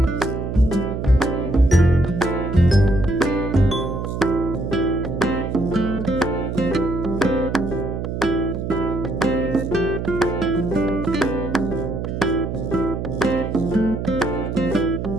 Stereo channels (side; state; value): right; noise; hum, 4 dB below the sound